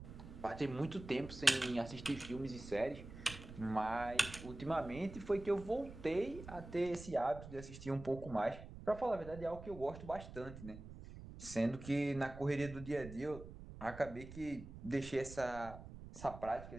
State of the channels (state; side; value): noise; right; rumble, 13 dB below the sound